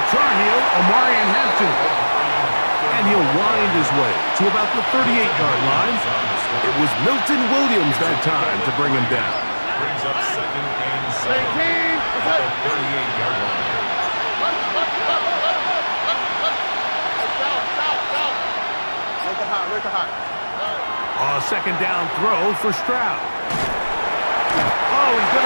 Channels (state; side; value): inverted; both; correlation -1.00